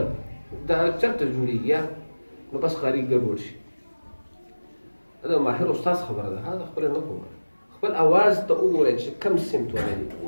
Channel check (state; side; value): inverted; both; correlation -1.00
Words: دا چېرته جوړېږي نو بس قاري ګډوډ شي دا ماهر استاد خبره ده هغه خپله نه کوم خپل اواز ته وګورئ چې کوم سمت ولري